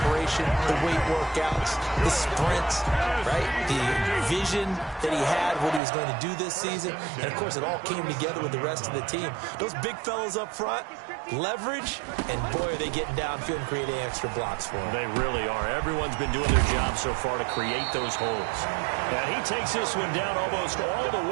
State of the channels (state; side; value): drops out; left; at 5.8 s